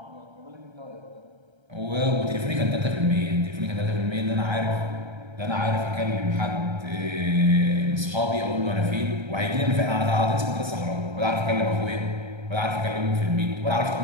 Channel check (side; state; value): left; late; 1.3 ms